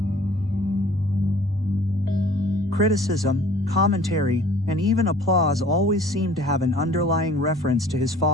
Criticism, commentary, and even applause always seemed to have an underlying reference to his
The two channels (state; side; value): normal; both; correlation 0.51